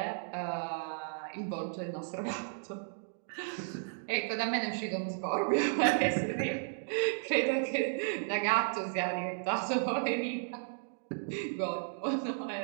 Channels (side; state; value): left; silent; digital silence